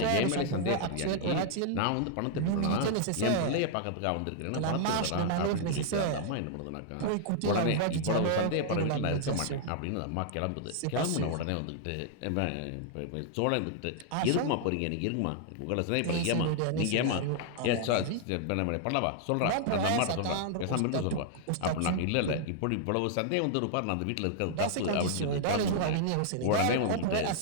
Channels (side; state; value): both; different; correlation -0.01